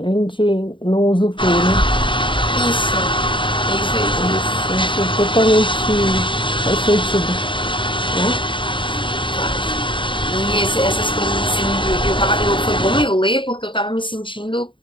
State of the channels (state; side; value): late; right; 0.24 ms